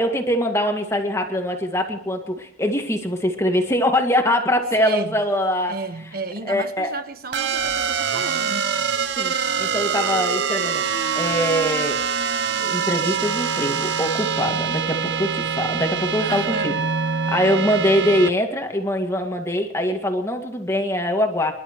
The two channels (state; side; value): normal; both; correlation 0.38